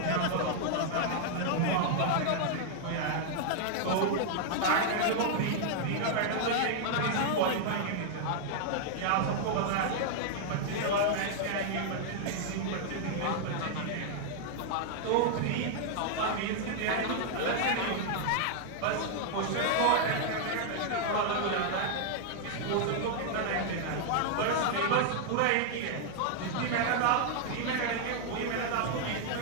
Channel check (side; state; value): both; different; correlation -0.01